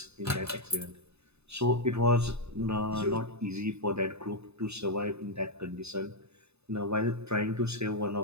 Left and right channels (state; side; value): late; left; 0.80 ms